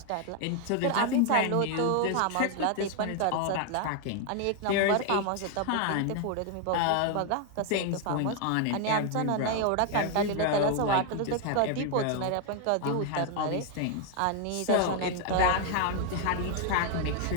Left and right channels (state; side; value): different; both; correlation 0.00